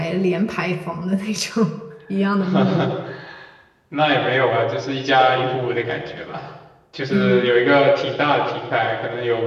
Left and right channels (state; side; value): identical; both; correlation 1.00